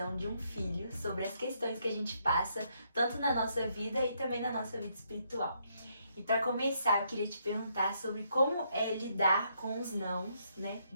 de um filho sobre as questões que a gente passa, tanto na nossa vida e também na nossa vida espiritual. E para começar, eu queria te perguntar sobre como é lidar com os nãos, né,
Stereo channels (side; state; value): both; inverted; correlation -0.74